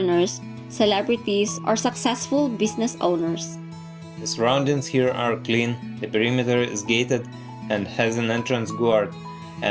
celebrities, or successful business owners. The surroundings here are clean, the perimeter is gated, and has an entrance guard,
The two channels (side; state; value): both; identical; correlation 1.00